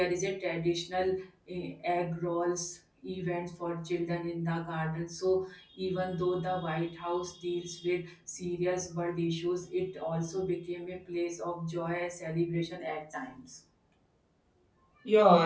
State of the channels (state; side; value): identical; both; correlation 1.00